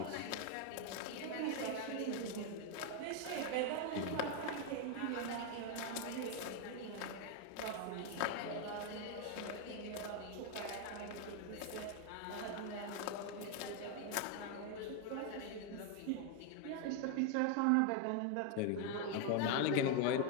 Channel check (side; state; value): both; different; correlation 0.01